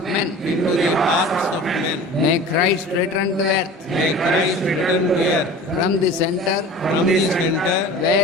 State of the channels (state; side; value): normal; both; correlation 0.39